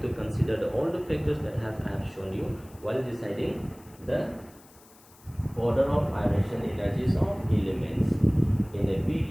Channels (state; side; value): noise; left; hiss, 25 dB below the sound